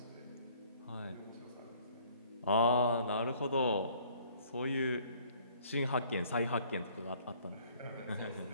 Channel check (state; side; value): inverted; both; correlation -0.58